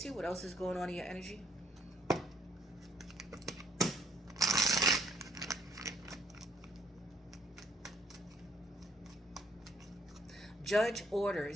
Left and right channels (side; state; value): both; normal; correlation 0.65